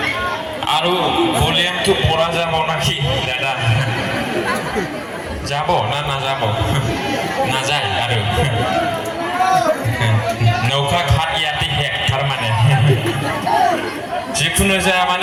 आरो भलिउमটো পড়া যাব নাকি দাদা যাব না না যাব না যায় आरो नौका घाट याति हेक थारमाने जिखुनु जाया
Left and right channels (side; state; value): both; identical; correlation 1.00